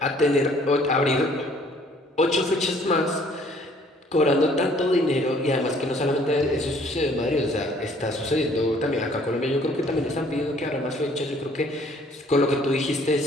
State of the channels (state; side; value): normal; both; correlation 0.59